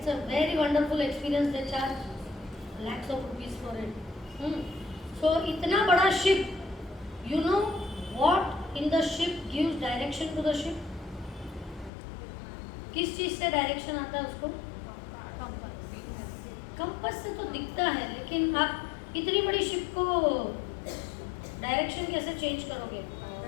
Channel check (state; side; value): drops out; right; at 11.9 s